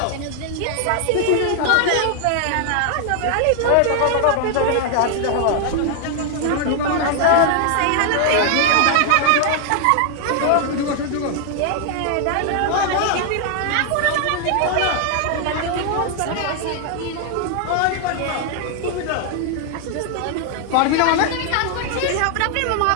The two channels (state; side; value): different; both; correlation 0.00